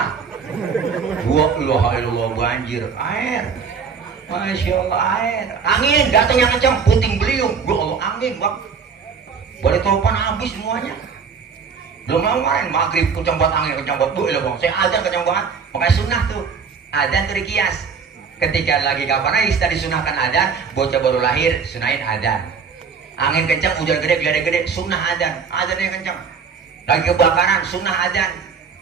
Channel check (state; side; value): quieter; left; 5.9 dB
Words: ilaha illallah, banjir, air, masya Allah, air, angin datang yang kencang, puting beliung, ya Allah, angin, Bang, balik topan habis semuanya. Belum lama kemarin maghrib kencang banget angin, kencang banget, bu, ilah Bang, saya adzan kencang banget, makanya sunnah tuh, adzan tuh dikias. Ketika lagi kapan aja kita disunahkan adzan, bocah baru lahir, sunahin adzan. Angin kencang, hujan gede, geledek gede, sunnah adzan, adzannya kencang. Lagi kebakaran, sunnah adzan.